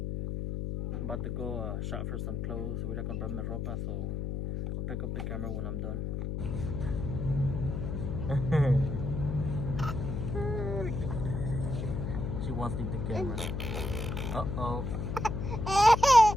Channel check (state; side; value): noise; left; hum, 3 dB below the sound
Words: I'm about to go shop for some clothes. Voy a comprarme ropa, so I'll pick up the camera when I'm done. She wants to leave the camera. Uh-oh.